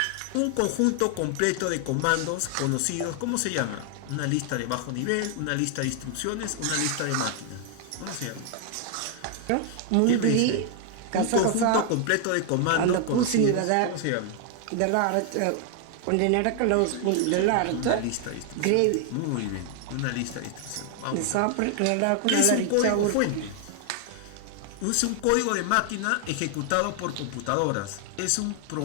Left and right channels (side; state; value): both; different; correlation 0.00